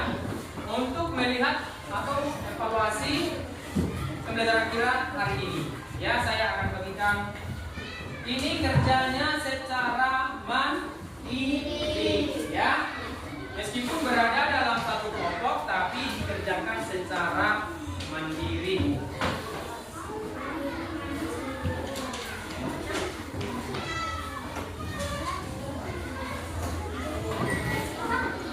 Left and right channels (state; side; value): identical; both; correlation 1.00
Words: untuk melihat atau evaluasi pembelajaran kita hari ini. Ya, saya akan bagikan ini kerjanya secara mandiri ya. Meskipun berada dalam satu kelompok tapi dikerjakan secara mandiri.